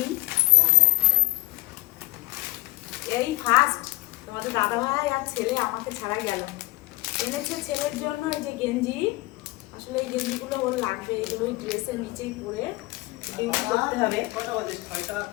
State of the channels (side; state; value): right; quieter; 20.9 dB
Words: এই ফার্স্ট তোমাদের দাদাভাই আর ছেলে আমাকে ছাড়া গেল। এনেছে ছেলের জন্য এই যে গেঞ্জি। আসলে এই গেঞ্জিগুলো ওর লাগবে, এগুলো ওই ড্রেসের নিচেই পরে ডিউটি করতে হবে।